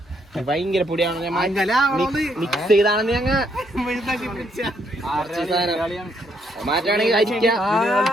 ഭയങ്കര പൊടിയാണ്. മിക്സ് ചെയ്താണെന്ന് ഞങ്ങൾ മാറ്റാണെങ്കിൽ അരിക്കാം.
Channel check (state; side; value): normal; both; correlation 0.73